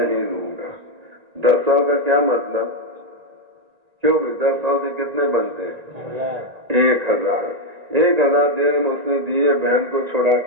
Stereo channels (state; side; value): late; left; 1.9 ms